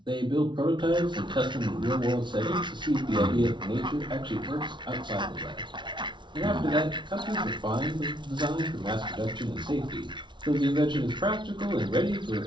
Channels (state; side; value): late; left; 0.23 ms